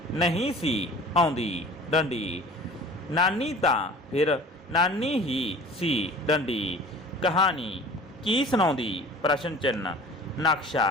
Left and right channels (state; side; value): normal; both; correlation 0.43